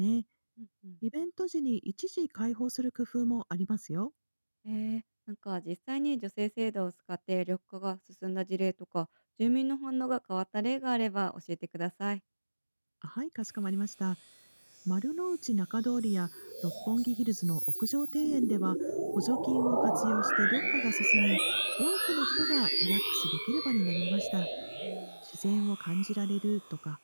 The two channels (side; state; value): both; inverted; correlation -1.00